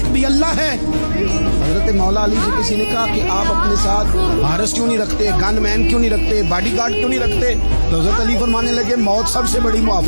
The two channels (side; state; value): both; inverted; correlation -1.00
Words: بھی اللہ ہے۔ حضرت مولا علی سے کسی نے کہا کہ آپ اپنے ساتھ حارس کیوں نہیں رکھتے، گن مین کیوں نہیں رکھتے، باڈی گارڈ کیوں نہیں رکھتے؟ تو حضرت علی فرمانے لگے موت سب سے بڑی